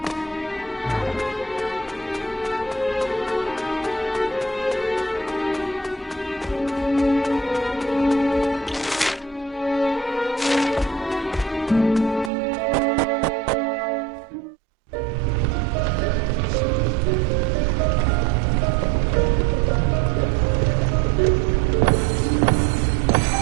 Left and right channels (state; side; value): drops out; left; at 12.3 s